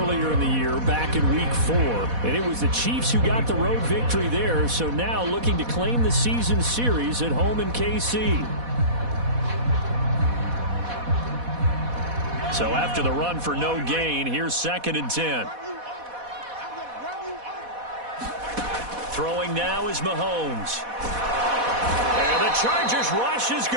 in the year, back in Week 4. And it was the Chiefs who got the road victory there, so now looking to claim the season series at home in KC. So after the run for no gain, here's 2nd and 10. Throwing now is Mahomes. And the Chargers rush is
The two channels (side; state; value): left; late; 4.1 ms